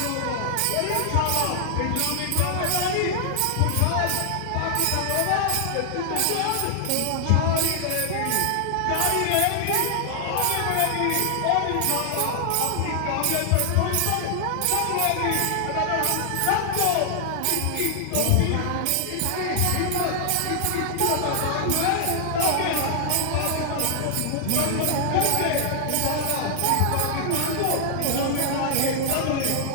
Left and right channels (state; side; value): different; both; correlation -0.01